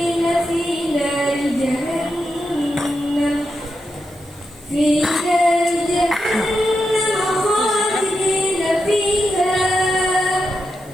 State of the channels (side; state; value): right; noise; hiss, 25 dB below the sound